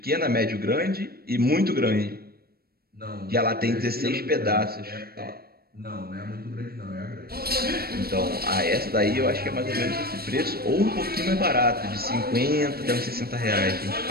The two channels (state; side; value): late; left; 0.44 ms